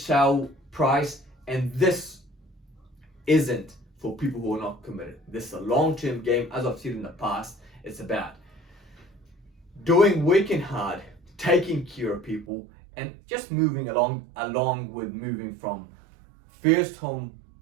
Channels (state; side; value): drops out; left; at 12.5 s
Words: price. And this isn't for people who are not committed. This is a long-term game. As I've said in the past, it's about working hard, taking care of people, and just moving along with moving from first home